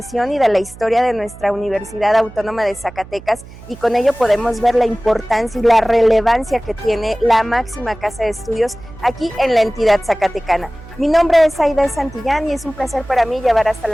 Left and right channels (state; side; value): noise; right; hum, 18 dB below the sound